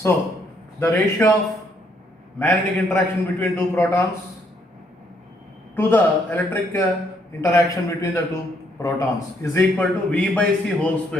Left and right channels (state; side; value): normal; both; correlation 0.71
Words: the ratio of magnetic interaction between two protons to the electric interaction between the two protons is equal to v by c whole